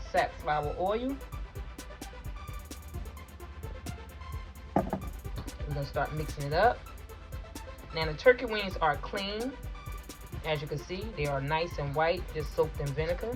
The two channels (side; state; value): both; identical; correlation 1.00